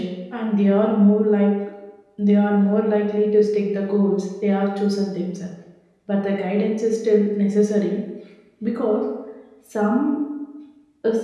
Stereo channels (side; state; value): both; identical; correlation 1.00